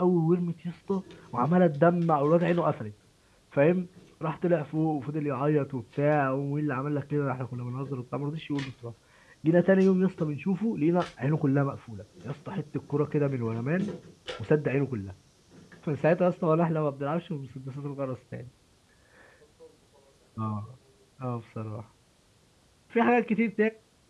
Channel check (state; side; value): identical; both; correlation 1.00